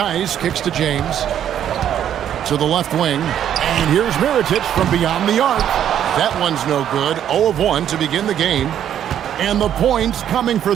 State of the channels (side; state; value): left; quieter; 10.1 dB